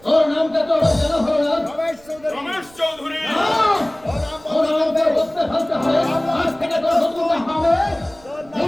তোর নামটা তো জানা হলো না। রমেশ চৌধুরী রমেশ চৌধুরী, ওর নাম ওর বলতে নামটা হবে। বলতে ফেলতে হবে। আজ থেকে তোর নতুন হবে তোর নাম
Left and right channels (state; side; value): noise; right; rumble, 25 dB below the sound